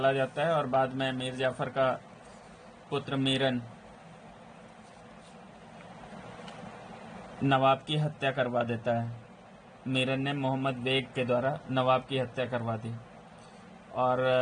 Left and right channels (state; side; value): identical; both; correlation 1.00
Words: जाता है और बाद में मीर जाफर का पुत्र मीरन नवाब की हत्या करवा देता है। मीरन ने मोहम्मद बेग के द्वारा नवाब की हत्या करवा दी और